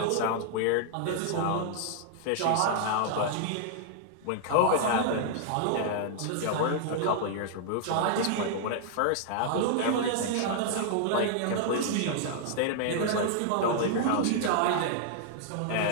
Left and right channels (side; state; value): both; different; correlation -0.01